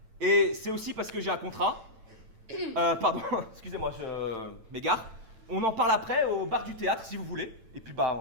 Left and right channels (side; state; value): left; late; 9.0 ms